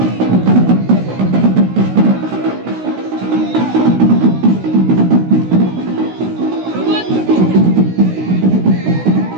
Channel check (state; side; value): late; left; 16 ms